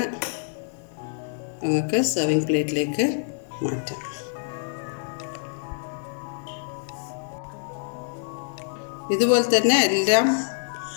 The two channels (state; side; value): silent; right; digital silence